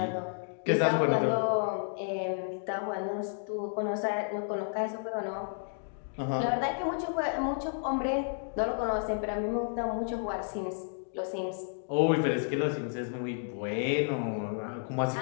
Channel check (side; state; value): right; silent; digital silence